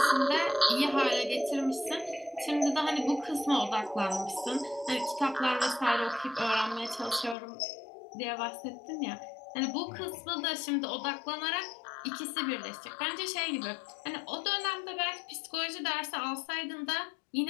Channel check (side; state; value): right; drops out; at 7.4 s